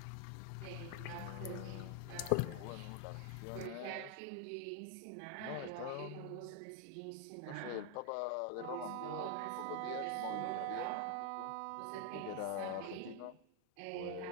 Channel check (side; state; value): both; different; correlation 0.00